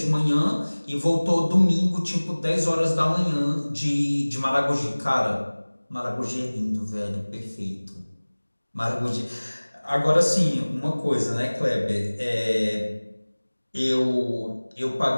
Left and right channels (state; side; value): inverted; both; correlation -1.00